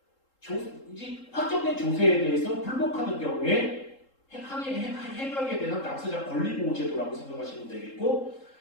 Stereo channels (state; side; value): late; right; 3.7 ms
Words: 이제 확정된 조세에 대해서 불복하는 경우에 행하게 되는 납세자 권리보호제도라고 생각하시면 되겠고